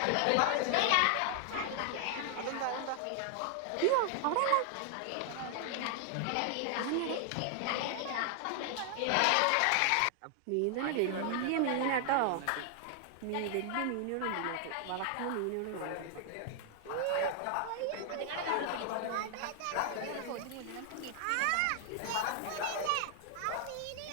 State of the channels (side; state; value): both; different; correlation 0.00